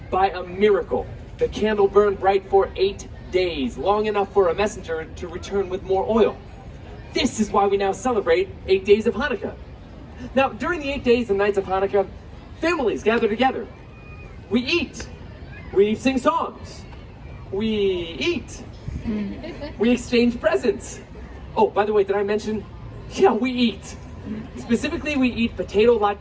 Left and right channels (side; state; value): both; identical; correlation 1.00